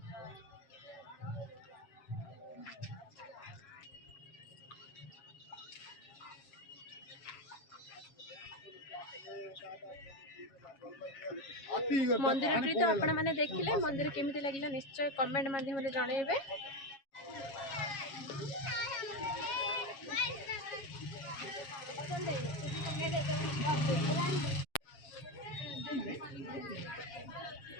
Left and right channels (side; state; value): right; late; 7.3 ms